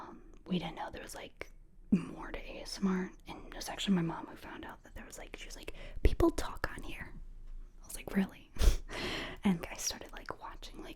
we didn't know there was like more to ASMR, and it was actually my mom who found out that there was like, she was like, people talk on here. I was like, really? And I started like watching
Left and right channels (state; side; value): identical; both; correlation 1.00